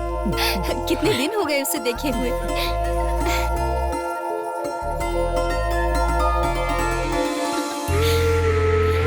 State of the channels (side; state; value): both; identical; correlation 1.00